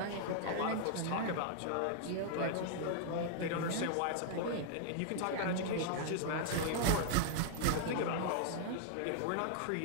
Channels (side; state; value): both; different; correlation -0.01